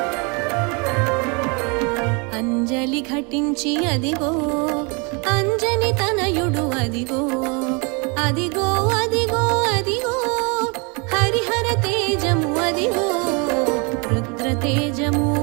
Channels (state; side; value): quieter; left; 31.6 dB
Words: అంజలి ఘటించి అదిగో అంజని తనయుడు అదిగో అదిగో అదిగో అదిగో హరిహర తేజము అదిగో రుద్ర తేజము